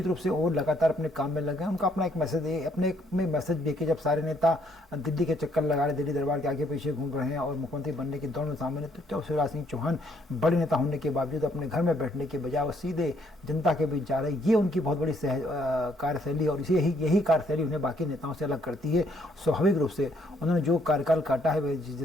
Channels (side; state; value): both; normal; correlation 0.68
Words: रूप से वो लगातार अपने काम में लगे हैं। उनका अपना एक मैसेज, अपने में मैसेज देके जब सारे नेता दिल्ली के चक्कर लगा रहे, दिल्ली दरबार के आगे पीछे घूम रहे हैं और मुख्यमंत्री बनने की दौड़ में शामिल है, तो शिवराज सिंह चौहान बड़े नेता होने के बावजूद अपने घर में बैठने के बजाय वो सीधे जनता के बीच जा रहे हैं। ये उनकी बहुत बड़ी कार्यशैली, और यही कार्यशैली उन्हें बाकी नेताओं से अलग करती है। स्वाभाविक रूप से उन्होंने जो कार्यकाल काटा है,